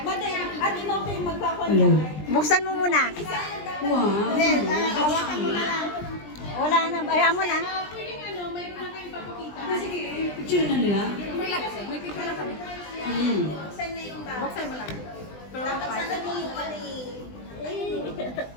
Buksan mo muna. Hawakan mo na lang. Wala na. Ayaw mo na. Picture na nila?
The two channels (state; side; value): late; right; 20 ms